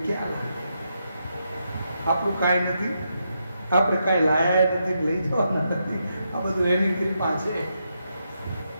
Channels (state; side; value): inverted; both; correlation -0.82